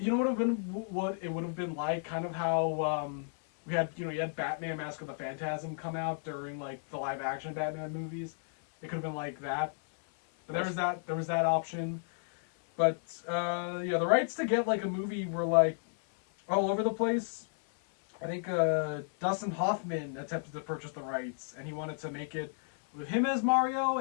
been what it would have been like, kind of how we had you had Batman Mask of the Phantasm come out during like the live action Batman movies. It could have been like that, but there was that option. But the rights to get like a movie were like all over the place. I think Dustin Hoffman attempted to purchase the rights, and he wanted to make it with him as Mario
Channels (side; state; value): right; silent; 56 dB below the other